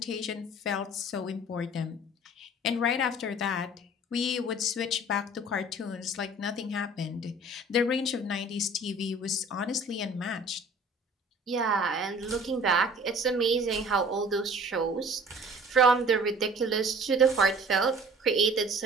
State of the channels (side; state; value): both; normal; correlation 0.48